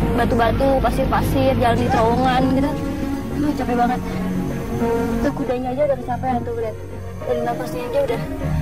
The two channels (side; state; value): both; identical; correlation 1.00